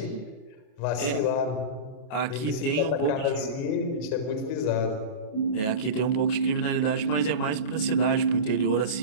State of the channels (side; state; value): right; late; 28 ms